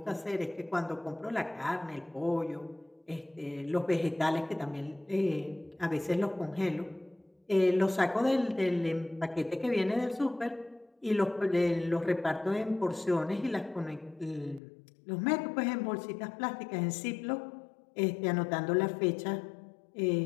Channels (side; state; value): right; drops out; at 14.6 s